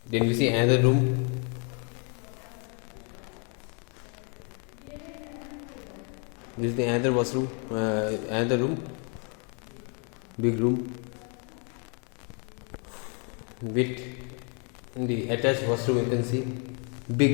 Then we see another room. This is the another washroom, another room, big room with the attached washroom. You can see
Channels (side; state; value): right; quieter; 37.7 dB